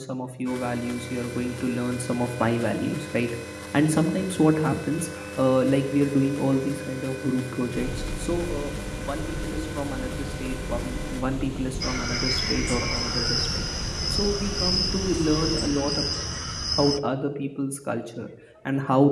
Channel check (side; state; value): both; identical; correlation 1.00